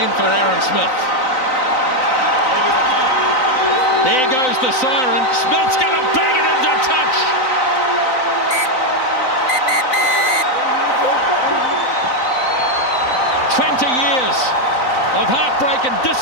for Aaron Smith. There goes the siren. Smith's going to bang it into touch. Years of heartbreak and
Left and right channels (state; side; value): late; right; 3.9 ms